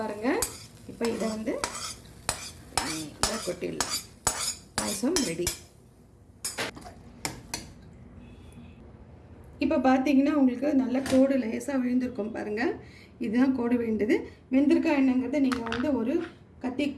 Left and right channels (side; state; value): both; identical; correlation 1.00